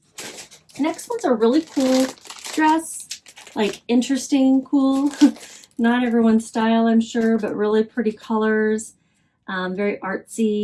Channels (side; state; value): both; identical; correlation 1.00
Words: Next one's a really cool dress, like interesting, cool. Not everyone's style, I'm sure, but really pretty colors, very